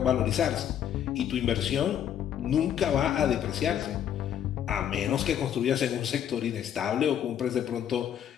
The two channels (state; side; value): quieter; right; 9.8 dB